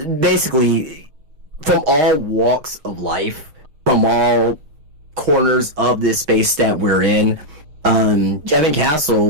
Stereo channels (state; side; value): late; left; 6.5 ms